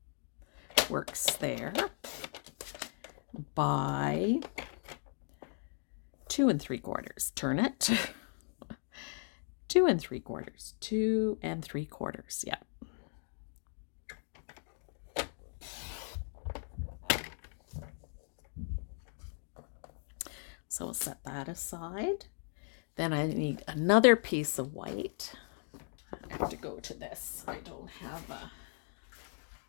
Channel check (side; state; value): right; silent; 53 dB below the other